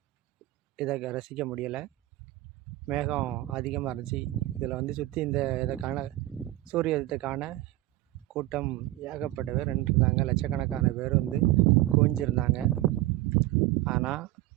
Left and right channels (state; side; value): quieter; left; 16.9 dB